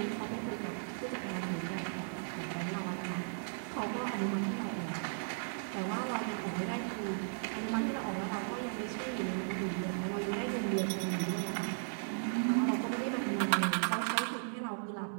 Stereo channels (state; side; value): silent; left; 54 dB below the other